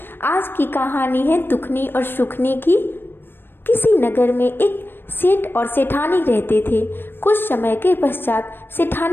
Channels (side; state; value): right; late; 0.099 ms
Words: आज की कहानी है दुखनी और सुखनी की। किसी नगर में एक सेठ और सेठानी रहते थे। कुछ समय के पश्चात